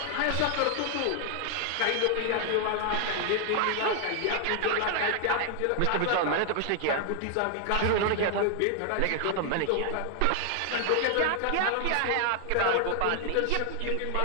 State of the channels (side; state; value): both; different; correlation 0.00